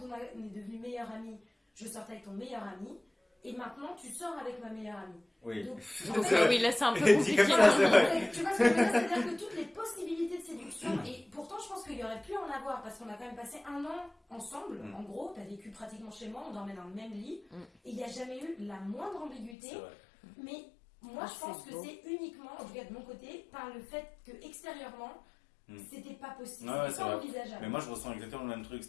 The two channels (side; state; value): right; drops out; at 19.6 s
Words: on est devenu meilleur ami, je sortais avec ton meilleur ami, et maintenant tu sors avec ma meilleure amie. Oui. Donc, oui, là c'est un peu compliqué. Tu vois ce que je veux dire, c'est-à-dire que toutes les possibilités de séduction, et pourtant je pense qu'il y aurait pu en avoir, parce qu'on a quand même passé 1 an ensemble, en gros, tu as vécu pratiquement chez moi, on dormait dans le même lit, et il n'y a jamais eu la moindre ambiguïté, mais moi je pense que c'est uniquement, en tout cas de mon côté, par le fait que extérieurement, c'était pas possible, c'était pas envisageable. Mais moi je ressens exactement le même truc,